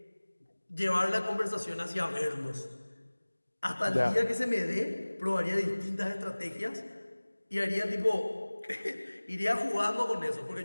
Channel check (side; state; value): both; inverted; correlation -1.00